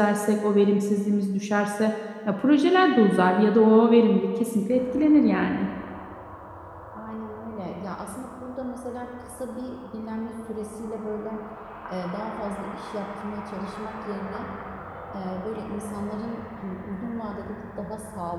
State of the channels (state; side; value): identical; both; correlation 1.00